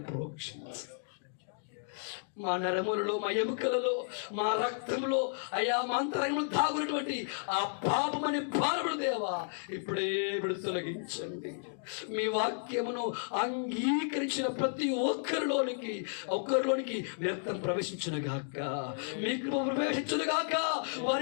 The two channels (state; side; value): silent; right; digital silence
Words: ప్రోక్షించు. మా నరములలో, మా ఎముకలలో, మా రక్తంలో, అయా మా అంతరంగంలో దాగున్నటువంటి ఆ పాపమనే భారముడు దేవా ఇప్పుడే తొలగించండి. మీ వాక్యమును అంగీకరించిన ప్రతి ఒక్కరిలోనికి వ్యర్థం ప్రవేశించును గాక, మీకు ప్రవేశించును గాక,